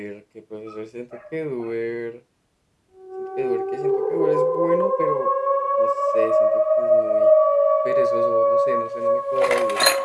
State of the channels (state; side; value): identical; both; correlation 1.00